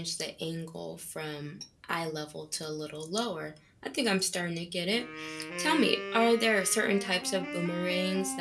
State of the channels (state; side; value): identical; both; correlation 1.00